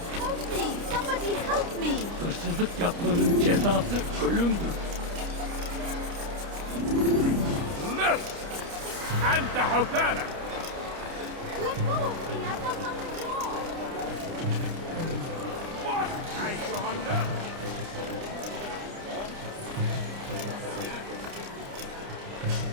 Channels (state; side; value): late; left; 29 ms